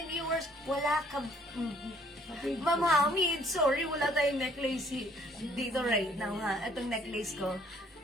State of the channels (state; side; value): normal; both; correlation 0.62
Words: ng viewers. Wala ka... Ma'am Hamid, sorry, wala tayong necklace dito right now, ha? Itong necklace ko.